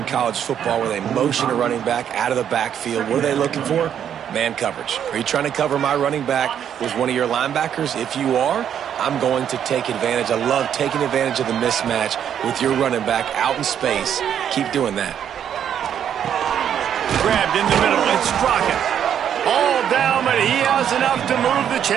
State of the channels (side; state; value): left; quieter; 9.1 dB